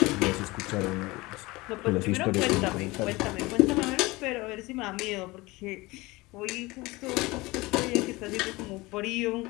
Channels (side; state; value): right; quieter; 21.9 dB